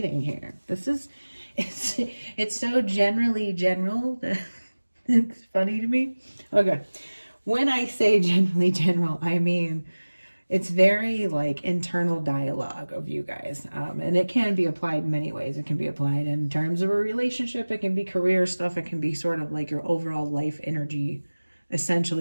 here. It's so generally general that it's funny to me. Okay. When I say generally general, I mean it's very like internal dialogue of you guys, and it can be applied in many ways. It can be applied in terms of a relationship, it can be career stuff, it can be sort of like your overall life energy,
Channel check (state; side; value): inverted; both; correlation -1.00